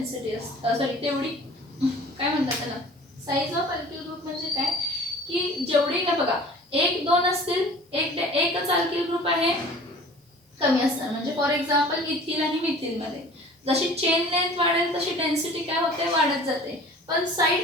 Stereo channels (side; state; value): both; normal; correlation 0.45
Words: असते. सॉरी, तेवढी काय म्हणतात त्याला? साइज ऑफ अल्किल ग्रुप म्हणजे काय की जेवढी काय बघा 1 2 असतील, एकच अल्किल ग्रुप आहे कमी असणार. म्हणजे फॉर एक्झाम्पल इथिल आणि मिथिल मध्ये जशी चेन लेंथ वाढेल तशी डेन्सिटी काय होते? वाढत जाते. पण